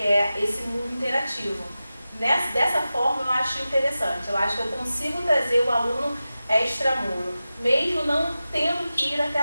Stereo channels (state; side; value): inverted; both; correlation -0.94